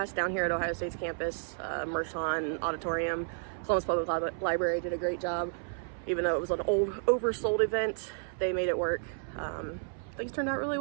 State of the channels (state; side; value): silent; left; 57 dB below the other